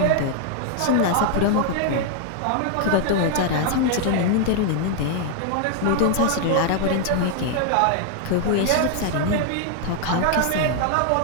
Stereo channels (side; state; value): both; different; correlation 0.00